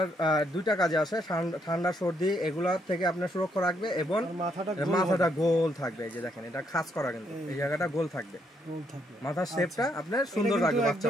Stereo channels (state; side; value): normal; both; correlation 0.74